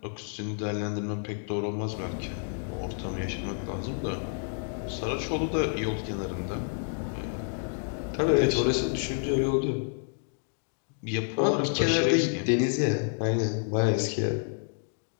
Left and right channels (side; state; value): right; silent; digital silence